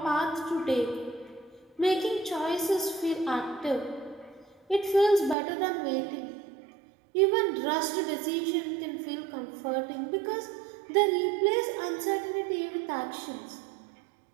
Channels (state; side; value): drops out; left; at 5.4 s